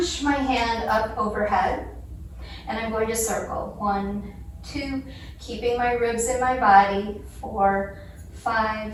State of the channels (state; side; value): identical; both; correlation 1.00